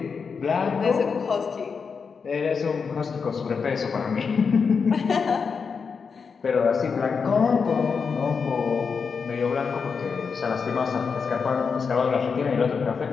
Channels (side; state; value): right; quieter; 5.6 dB